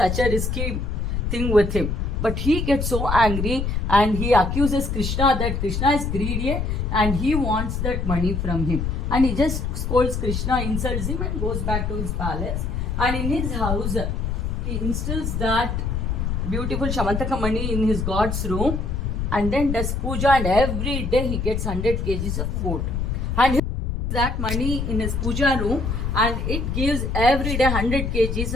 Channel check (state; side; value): noise; left; rumble, 1 dB below the sound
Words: a risky thing with him. But he gets so angry and he accuses Krishna that Krishna is greedy and he wants that money from him. And he just scolds Krishna, insults him and goes back to his palace. And in his house, he instills that beautiful Shamantaka Mani in his god's room and then does puja, and every day he gets 100 kgs of food. And he puts that money in his puja room and it gives every day 100 kgs